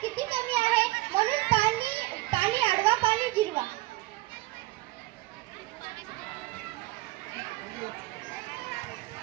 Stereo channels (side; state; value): left; quieter; 19.6 dB